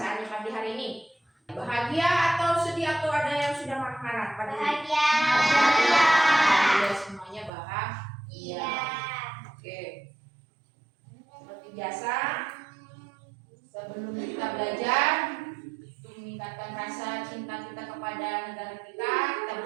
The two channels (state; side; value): drops out; left; at 7.5 s